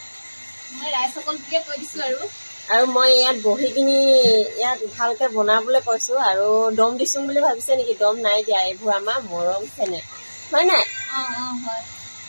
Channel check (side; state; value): both; inverted; correlation -1.00